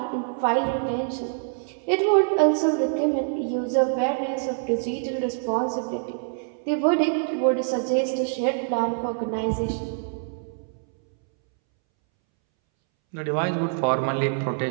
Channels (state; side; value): silent; left; 62 dB below the other